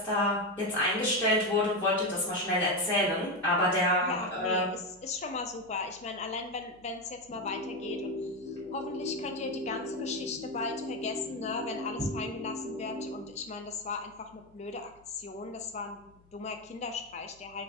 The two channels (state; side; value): noise; left; hum, 29 dB below the sound